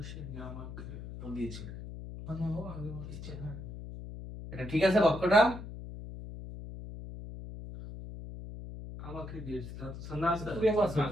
এটা ঠিক আছে বাক্যটা? আমাকে দিয়েছে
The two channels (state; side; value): noise; left; hum, 10 dB below the sound